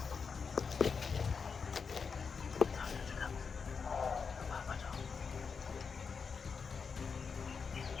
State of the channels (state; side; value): quieter; right; 5.6 dB